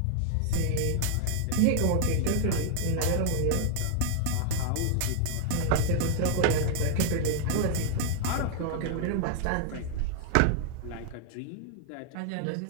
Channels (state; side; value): different; both; correlation 0.00